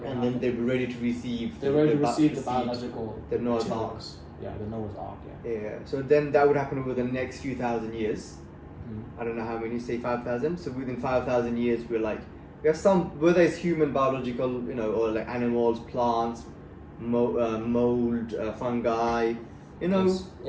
And then they'll be ready to receive. They're ready to receive the biological. The Noah's Ark. Yeah, the Noah's Ark. Yeah. So then that would happen over the next few thousand years. I don't know how many, say 5,000. So within 5,000 years, we have some, whether it's human biological, or animals, plants, mold, fungi,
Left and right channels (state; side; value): identical; both; correlation 1.00